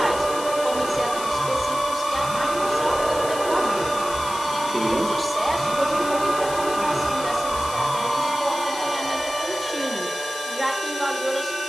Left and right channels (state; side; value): noise; left; hiss, 10 dB below the sound